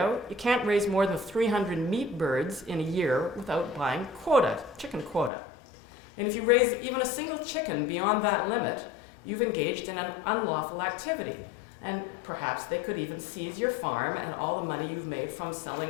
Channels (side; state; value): right; drops out; at 5.3 s